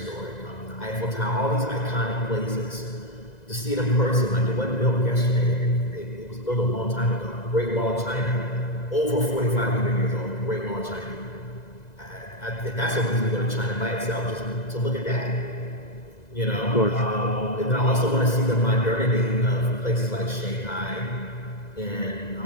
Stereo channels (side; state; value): right; late; 2.0 ms